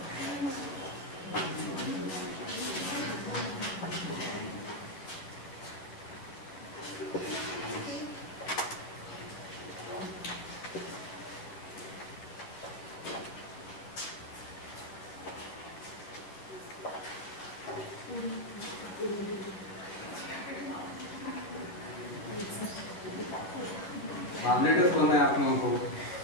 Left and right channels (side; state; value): right; late; 11 ms